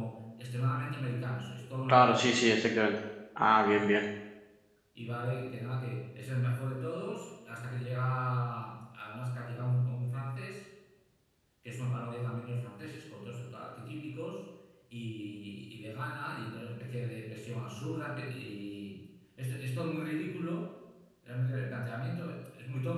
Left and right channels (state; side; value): identical; both; correlation 1.00